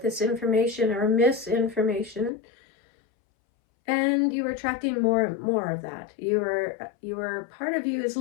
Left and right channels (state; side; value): drops out; right; at 2.3 s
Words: this information or misinformation, and you are attracting more and more of that. Your part of you is